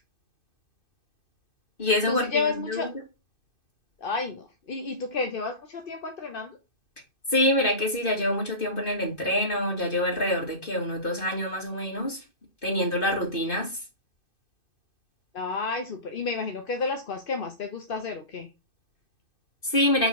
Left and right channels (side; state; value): right; late; 2.5 ms